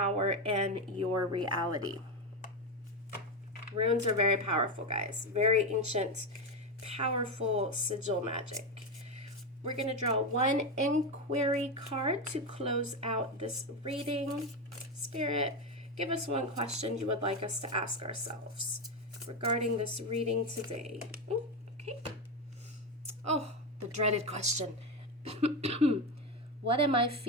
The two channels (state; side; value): normal; both; correlation 0.13